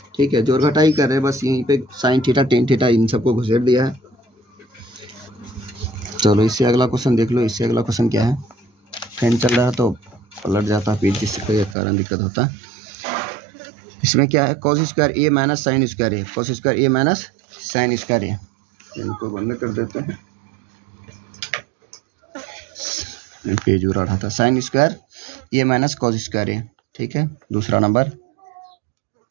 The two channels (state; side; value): drops out; left; at 11.8 s